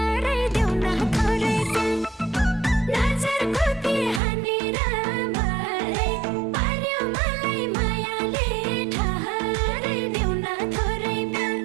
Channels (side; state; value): left; drops out; at 4.2 s